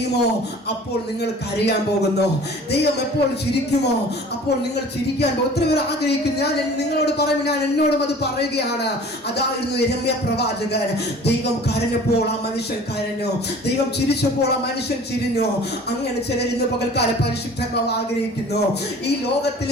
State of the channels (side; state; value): both; normal; correlation 0.46